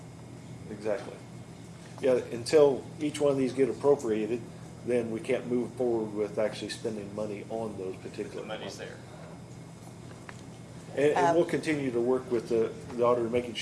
Exactly. Yeah, until each one of these get appropriated, then we can't move forward with actually spending money on those The particular. money's there. And we'll continue to work with the auditor, making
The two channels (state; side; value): identical; both; correlation 1.00